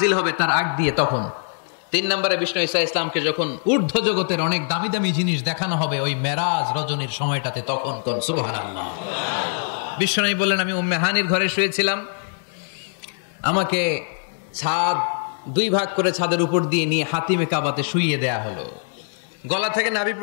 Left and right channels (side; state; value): right; silent; digital silence